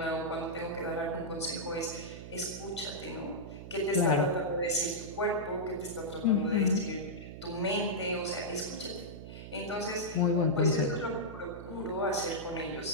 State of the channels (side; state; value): right; noise; hum, 11 dB below the sound